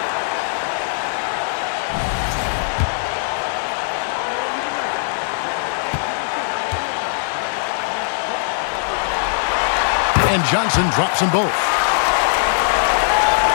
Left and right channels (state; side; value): silent; right; digital silence